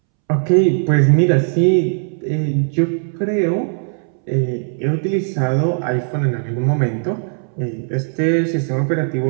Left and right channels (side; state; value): left; silent; 67 dB below the other